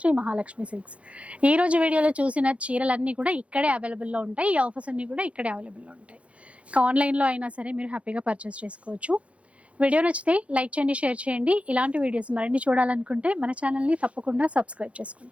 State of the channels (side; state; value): left; late; 0.063 ms